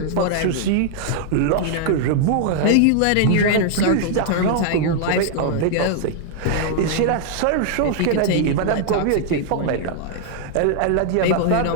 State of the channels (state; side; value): different; both; correlation -0.01